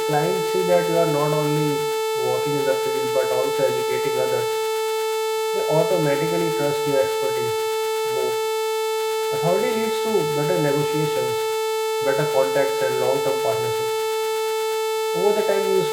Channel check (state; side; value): identical; both; correlation 1.00